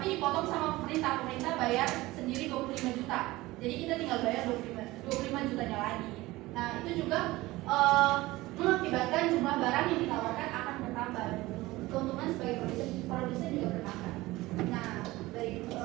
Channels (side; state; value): left; quieter; 19.1 dB